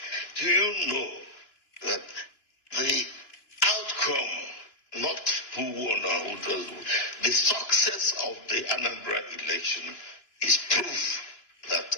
Do you know that the outcome, not who won or who doesn't, the success of the Anambra election is proof that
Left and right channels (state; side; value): late; right; 2.9 ms